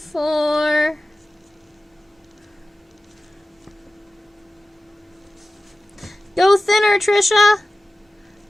Go thinner, Trisha.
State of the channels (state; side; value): normal; both; correlation 0.96